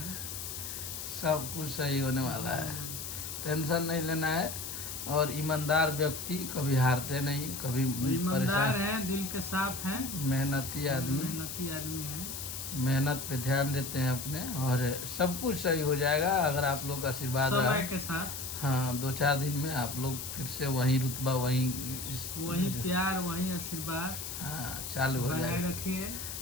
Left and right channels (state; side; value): noise; left; hiss, 7 dB below the sound